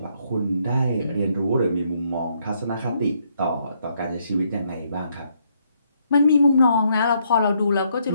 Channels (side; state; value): both; inverted; correlation -0.72